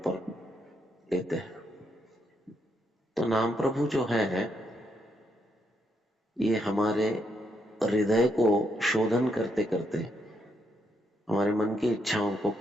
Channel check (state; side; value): normal; both; correlation 0.78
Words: लेते हैं। तो नाम प्रभु जो है ये हमारे हृदय को शोधन करते करते हमारे मन की इच्छाओं को